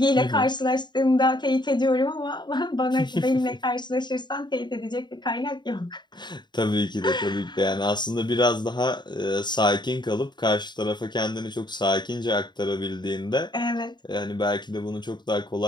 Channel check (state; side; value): late; right; 0.21 ms